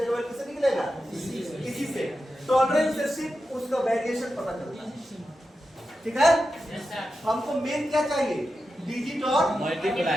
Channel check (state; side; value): normal; both; correlation 0.90